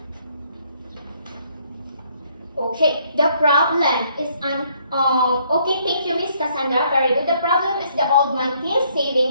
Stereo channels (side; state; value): both; inverted; correlation -0.67